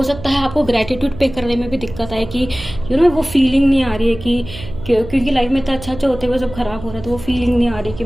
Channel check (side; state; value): right; noise; hum, 13 dB below the sound